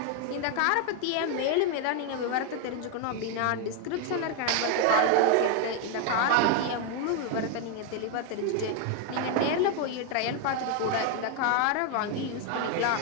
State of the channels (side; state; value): both; different; correlation 0.01